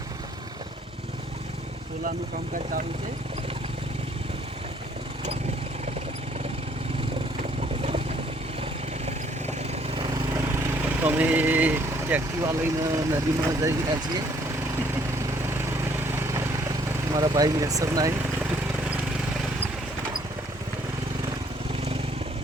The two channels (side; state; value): both; normal; correlation 0.63